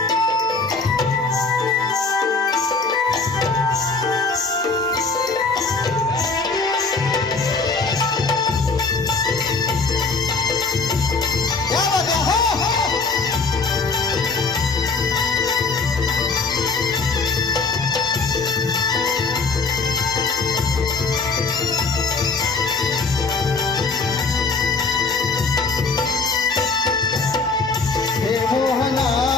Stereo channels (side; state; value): right; quieter; 4.2 dB